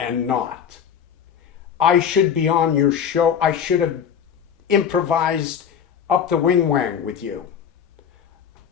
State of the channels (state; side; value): quieter; right; 8.0 dB